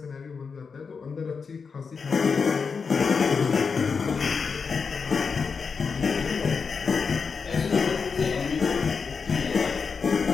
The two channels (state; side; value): quieter; right; 5.4 dB